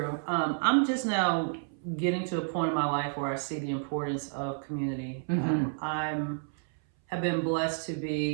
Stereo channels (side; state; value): left; silent; 58 dB below the other